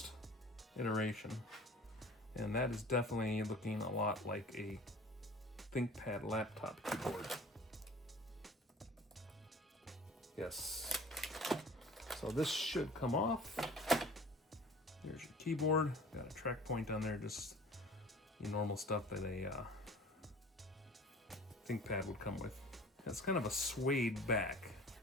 iteration, and that is definitely looking a lot like a ThinkPad laptop keyboard. Yes. So this should come off. There's your keyboard. Got a track point on there, just your normal stuff that a ThinkPad would come with. It's kind of a suede back,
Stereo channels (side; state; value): both; normal; correlation 0.44